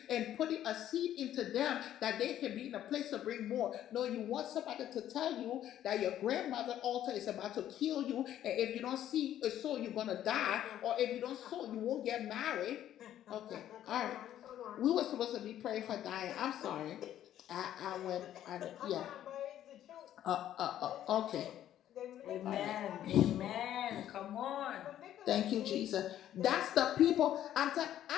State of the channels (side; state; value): right; quieter; 11.7 dB